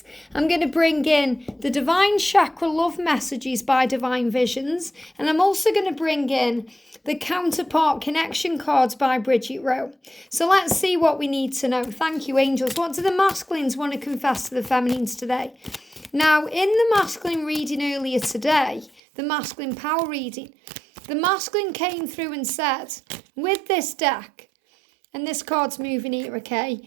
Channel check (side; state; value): left; drops out; at 19.0 s